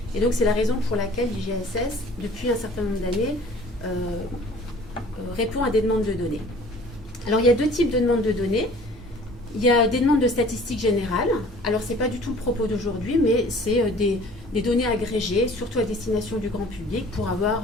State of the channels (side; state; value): both; normal; correlation 0.49